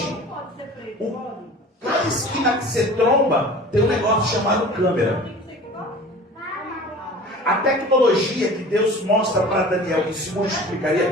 cada esquina que você tromba tem um negócio chamado câmera. A tecnologia que Deus mostra para Daniel que se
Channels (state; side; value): normal; both; correlation 0.42